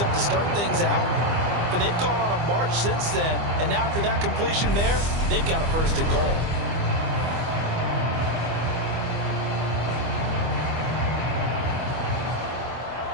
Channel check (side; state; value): left; late; 25 ms